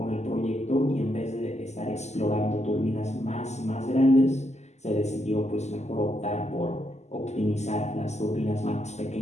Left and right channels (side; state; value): right; late; 0.33 ms